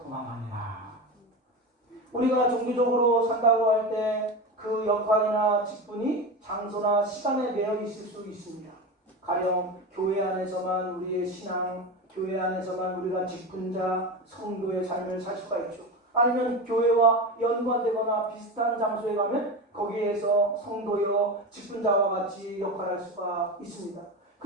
도망하니라. 우리가 종교적으로 산다고 할 때 그 역할이나 직분이 장소나 시간에 매여 있을 수 있습니다. 가령 교회 안에서만 우리의 신앙, 교회 안에서만 우리가 직분자, 성도의 삶을 살 수가 있죠. 아니면 교회와 연관되거나 비슷한 장소에 가면 거기에서 성도여 직분자와 같이 역할할 수가 있습니다.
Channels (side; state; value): both; normal; correlation 0.22